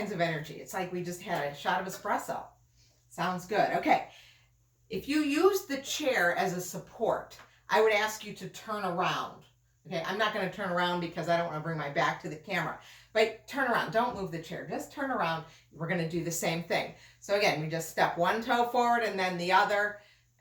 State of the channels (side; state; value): both; identical; correlation 1.00